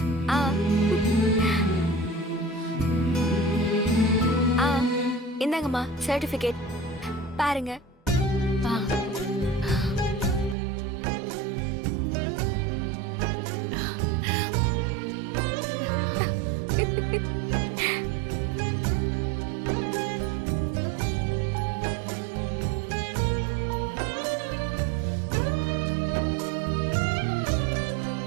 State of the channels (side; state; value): left; drops out; at 10.6 s